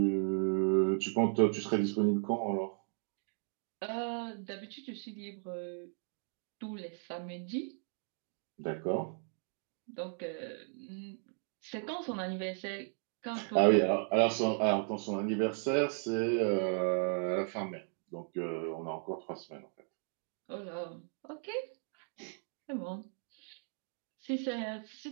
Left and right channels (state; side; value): silent; left; 54 dB below the other